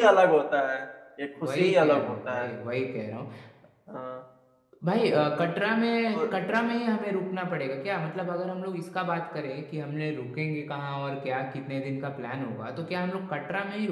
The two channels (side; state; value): both; identical; correlation 1.00